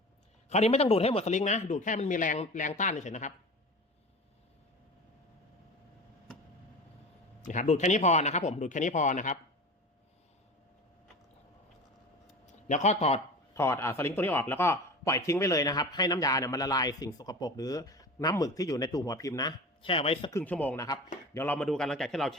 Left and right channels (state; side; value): normal; both; correlation 0.34